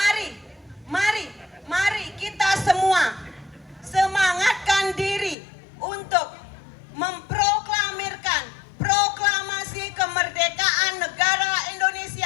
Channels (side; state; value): right; drops out; at 5.4 s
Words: kita semua semangatkan diri untuk memproklamirkan proklamasi kemerdekaan negara